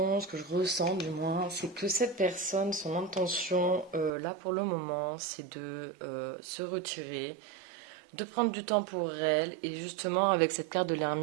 ce que je ressens du moins, c'est que cette personne, son intention, là pour le moment, c'est de se retirer, de prendre du temps pour elle. Et justement, avec cette carte de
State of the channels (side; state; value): left; drops out; at 4.1 s